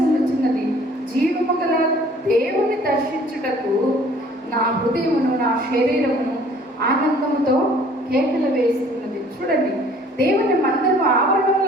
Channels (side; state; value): both; normal; correlation 0.54